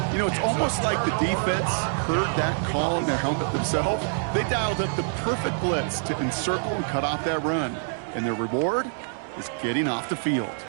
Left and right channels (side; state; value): left; silent; digital silence